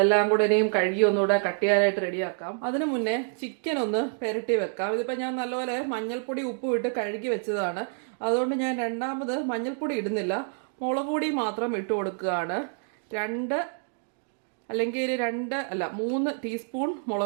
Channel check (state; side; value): silent; left; 59 dB below the other